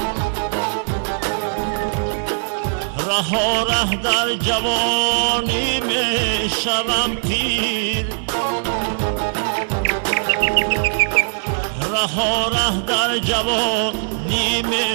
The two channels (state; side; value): silent; left; digital silence